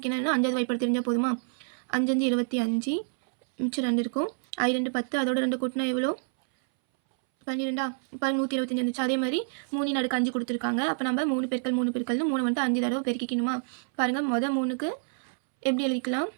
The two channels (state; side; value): silent; left; 59 dB below the other